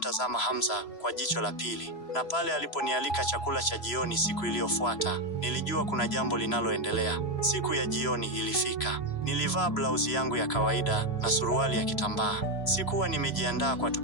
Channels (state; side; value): late; right; 3.0 ms